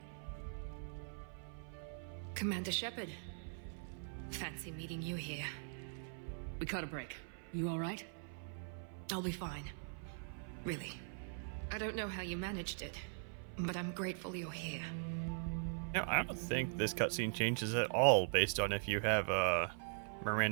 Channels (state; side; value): silent; left; 50 dB below the other